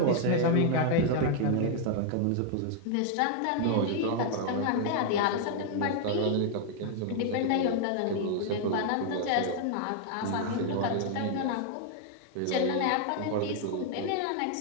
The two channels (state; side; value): different; both; correlation 0.00